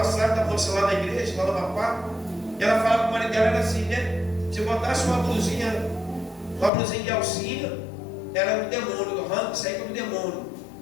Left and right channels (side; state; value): right; drops out; at 6.7 s